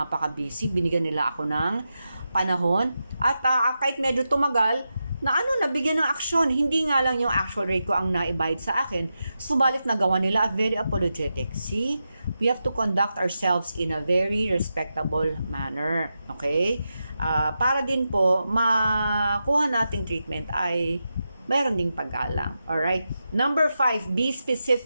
binigyan nila ako ng panahon. At kahit medyo tumagal, nabigyan ng aksyon. Hindi nga lang yung actual rate ko ang naibayad sa akin, subalit nagawa nila at very apologetic. See, we have to conduct ourselves in a very respectable manner. Okay? Para din po, makuha nating treatment ay mayroon ding paggalang. Alright? Number 5, be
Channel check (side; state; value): both; inverted; correlation -0.89